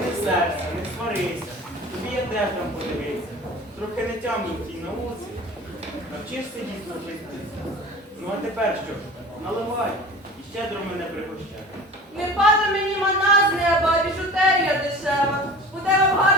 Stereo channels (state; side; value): normal; both; correlation 0.39